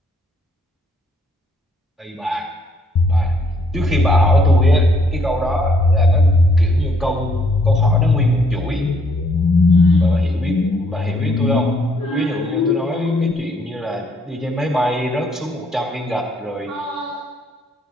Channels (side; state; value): both; normal; correlation 0.68